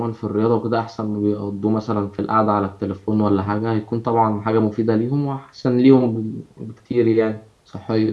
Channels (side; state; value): both; identical; correlation 1.00